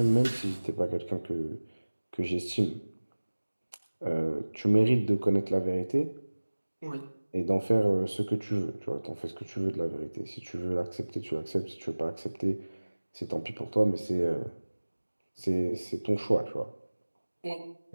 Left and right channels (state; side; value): inverted; both; correlation -1.00